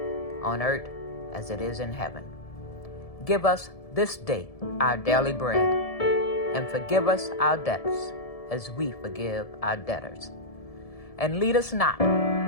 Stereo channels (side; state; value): right; late; 1.7 ms